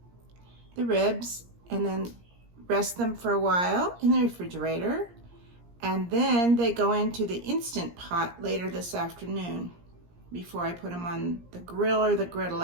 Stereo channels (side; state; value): left; late; 17 ms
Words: the ribs and then rest them for a while in the refrigerator. And then they go into the Instant Pot later this afternoon before I put them on the grill or the griddle.